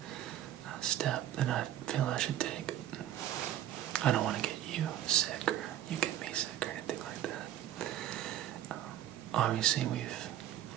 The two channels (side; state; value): left; quieter; 11.9 dB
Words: step that I feel I should take. I don't want to get you sick or you get me sick or anything like that. Obviously, we've